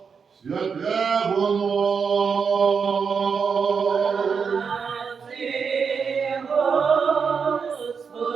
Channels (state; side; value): quieter; left; 6.0 dB